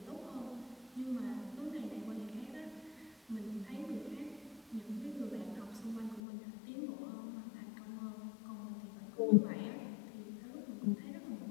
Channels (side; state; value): right; drops out; at 6.2 s